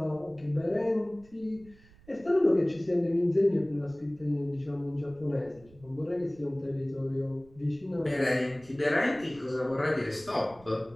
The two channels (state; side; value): noise; right; rumble, 25 dB below the sound